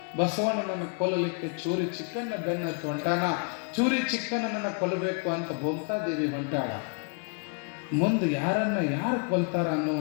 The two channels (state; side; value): quieter; right; 37.2 dB